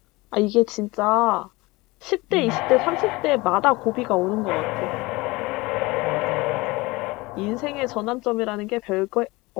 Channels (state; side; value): quieter; right; 22.5 dB